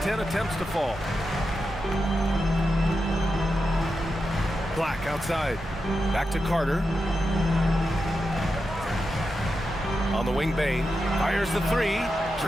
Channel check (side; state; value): both; normal; correlation 0.89